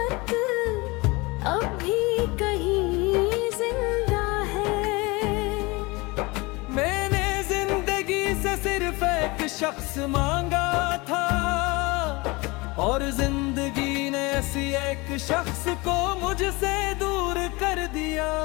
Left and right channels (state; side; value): quieter; right; 24.5 dB